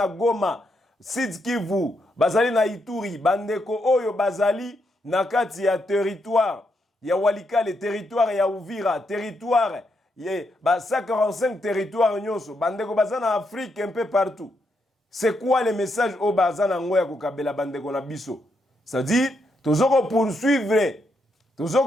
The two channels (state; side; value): normal; both; correlation 0.79